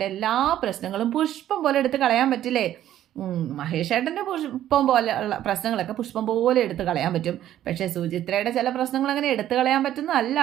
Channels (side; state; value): left; quieter; 12.1 dB